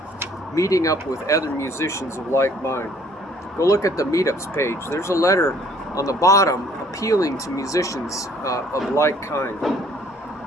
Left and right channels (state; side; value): normal; both; correlation 0.59